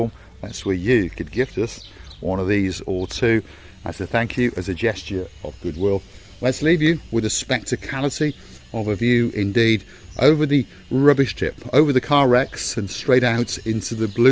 That's where you could gift us one of these or 2 as a thank you, as a gesture of goodwill. Let's leave you with a spectacality of a view indeed over the rubbish tip, over the car wrecks, and straight out into the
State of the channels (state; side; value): identical; both; correlation 1.00